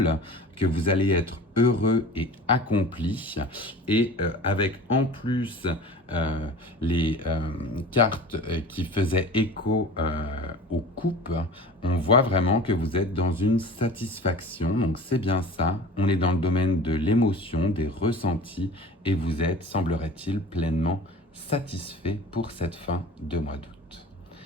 que vous allez être heureux et accompli. Et avec en plus les cartes qui faisaient écho aux coupes, on voit vraiment que vous êtes dans une satisfaction. Donc c'est bien ça, on est dans le domaine de l'émotion, des ressentis, et vous êtes, semblerait-il, pleinement satisfait pour cette fin de mois d'août.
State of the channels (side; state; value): both; normal; correlation 0.38